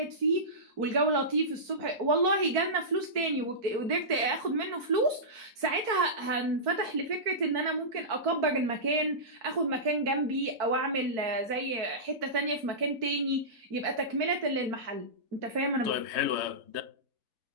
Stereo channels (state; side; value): late; left; 4.5 ms